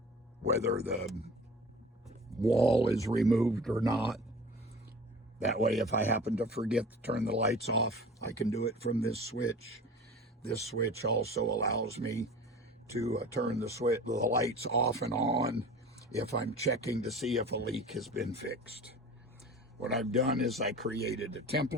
whether the wall is removed or not. That way, if I happen to forget to turn the lights off, I can do it from this switch. This switch also allows me to turn the lights off and on if I'm checking to see if a leak has been fixed. What I've done is I created a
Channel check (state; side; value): normal; both; correlation 0.40